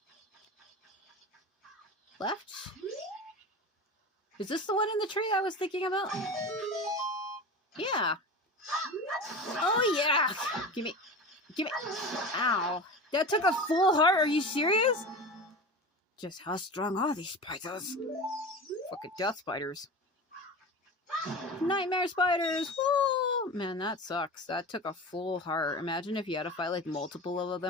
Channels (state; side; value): normal; both; correlation 0.30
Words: Left? Is this the one in the tree I was thinking about? Yeah. Oh yeah. Give me. Ow. That took a full heart. Are you serious? Just how strong are these spiders? Fucking death spiders. Nightmare spiders. Woo! Man, that sucks. That took a full heart. Imagine if you had to fight like multiple of